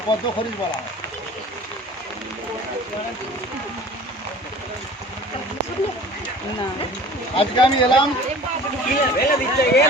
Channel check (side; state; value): both; normal; correlation 0.45